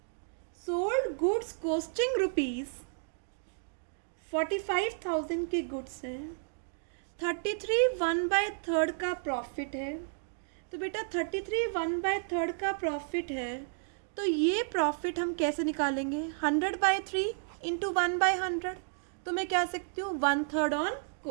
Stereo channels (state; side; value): silent; left; digital silence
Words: सोल्ड गुड्स कॉस्टिंग ₹45,000 के गुड्स हैं. 33 1/3 का प्रॉफिट है. तो बेटा 33 1/3 का प्रॉफिट है, तो ये प्रॉफिट हम कैसे निकालेंगे? 100/3 इंटू 1/100. तो मैं कह सकती हूँ 1/3 ऑन